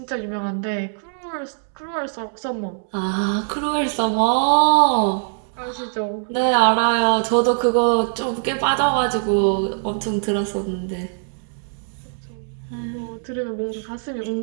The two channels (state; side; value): silent; left; digital silence